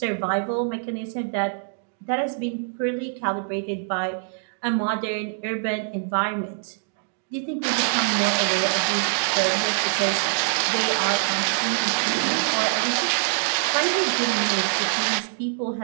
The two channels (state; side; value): silent; left; digital silence